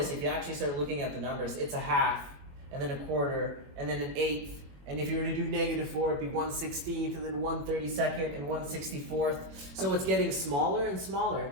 if you actually start looking at the numbers, it's a half, and then a quarter, and then an eighth. And if you were to do -4, it'd be 1/16th, and then 1/32nd, and 1/64th. So it's getting smaller and smaller.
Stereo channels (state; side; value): late; left; 22 ms